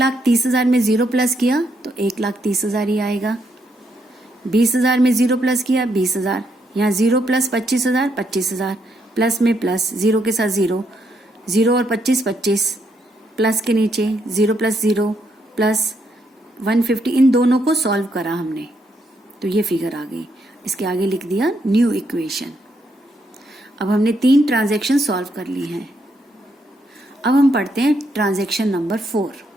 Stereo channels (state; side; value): normal; both; correlation 0.76